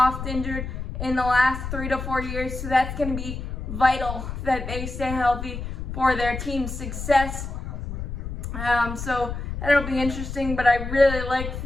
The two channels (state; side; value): noise; left; rumble, 6 dB below the sound